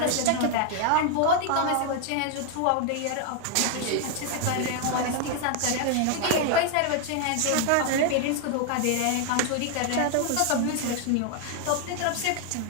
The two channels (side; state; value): both; different; correlation 0.00